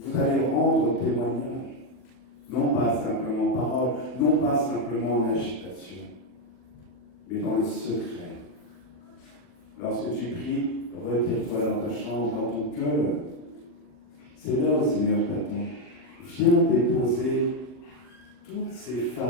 vous allez rendre témoignage. Non pas simplement en parole, non pas simplement en agitation, mais dans le secret. Lorsque tu pries, retire-toi dans ta chambre, dans ton cœur. C'est là où le Seigneur t'attend. Viens déposer tous ces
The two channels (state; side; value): late; right; 40 ms